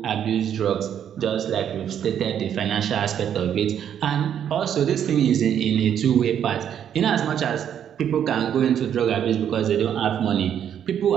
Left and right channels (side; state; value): left; quieter; 9.3 dB